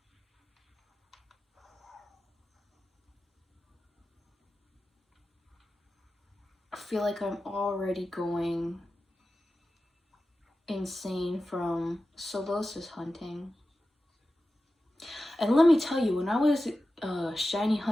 I feel like I'm already going insane from solosis hunting. And let me tell you, when I was shiny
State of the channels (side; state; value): both; normal; correlation 0.94